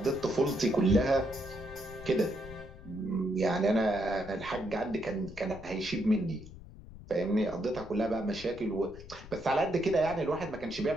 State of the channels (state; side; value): noise; left; rumble, 16 dB below the sound